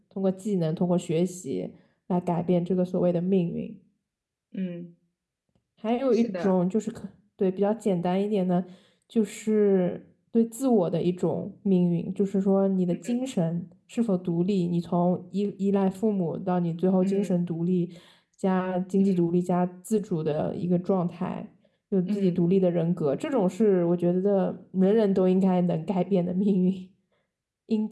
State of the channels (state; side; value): identical; both; correlation 1.00